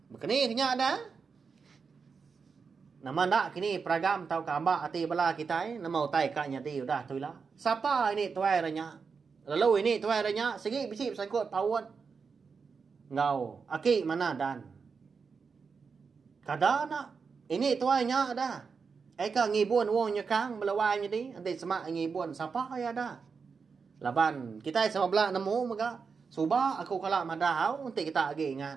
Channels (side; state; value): left; quieter; 5.4 dB